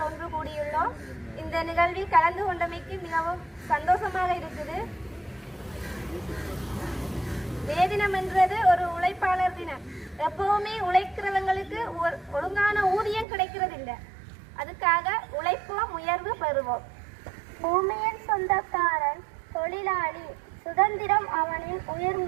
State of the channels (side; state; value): left; drops out; at 13.2 s